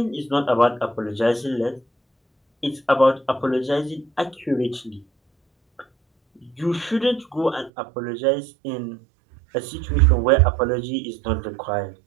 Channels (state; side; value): drops out; left; at 7.7 s